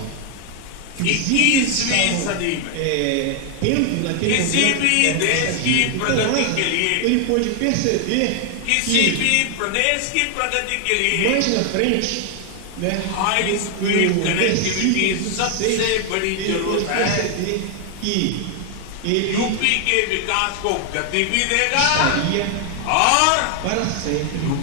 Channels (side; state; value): both; different; correlation 0.00